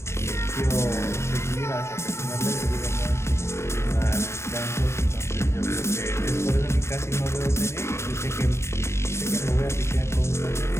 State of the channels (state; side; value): late; right; 0.13 ms